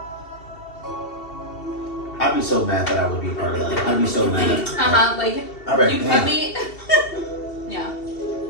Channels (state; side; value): late; right; 2.7 ms